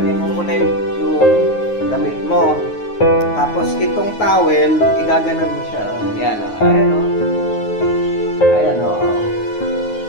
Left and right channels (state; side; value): late; right; 9.5 ms